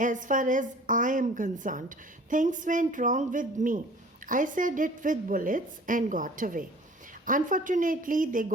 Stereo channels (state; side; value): normal; both; correlation 0.48